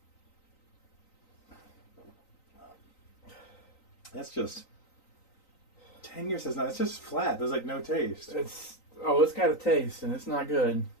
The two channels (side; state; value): right; late; 3.9 ms